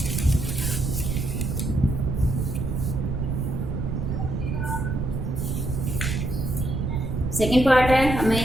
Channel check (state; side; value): noise; right; rumble, 2 dB below the sound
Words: सेकंड पार्ट है,